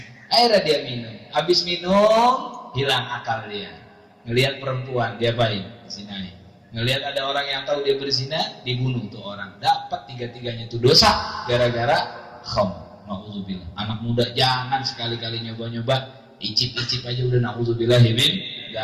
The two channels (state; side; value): identical; both; correlation 1.00